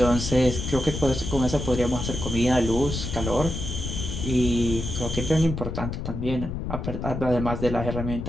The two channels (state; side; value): noise; left; rumble, 5 dB below the sound